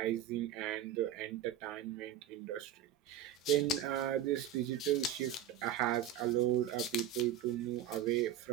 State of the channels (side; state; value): left; quieter; 10.0 dB